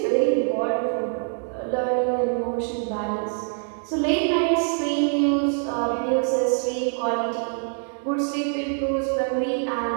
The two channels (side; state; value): left; silent; 58 dB below the other